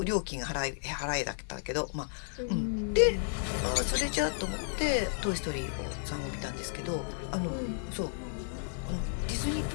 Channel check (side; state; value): right; silent; digital silence